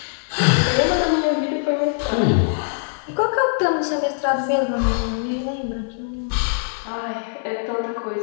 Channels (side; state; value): right; silent; 57 dB below the other